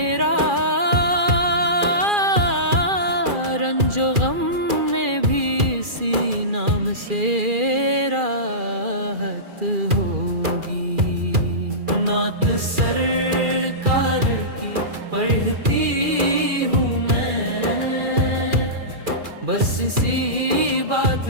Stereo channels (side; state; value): left; late; 2.4 ms